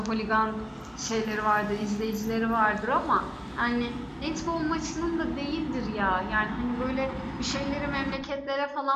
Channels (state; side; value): identical; both; correlation 1.00